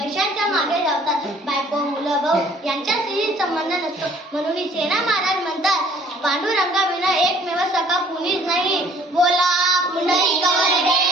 मागे धावतात. बायको मुलं भाऊ यांच्याशी संबंध नसतो. म्हणून सेना महाराज म्हणतात पांडुरंगाविना एकमेव सखा कुणीच नाही. बोला पुंडलिक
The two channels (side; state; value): both; normal; correlation 0.56